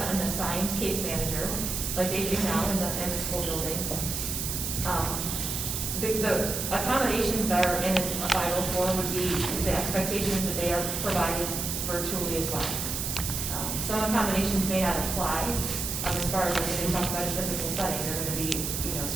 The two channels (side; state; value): right; noise; hiss, 3 dB below the sound